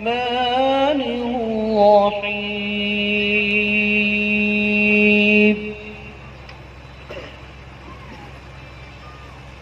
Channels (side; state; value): both; identical; correlation 1.00